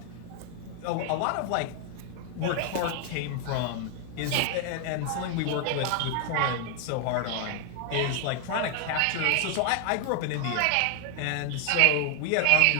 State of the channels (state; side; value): different; both; correlation 0.00